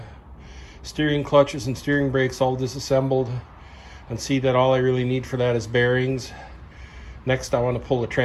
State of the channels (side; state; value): both; identical; correlation 1.00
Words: steering clutches and steering brakes all disassembled, and see that all I really need for that is bearings. Next, I want to pull the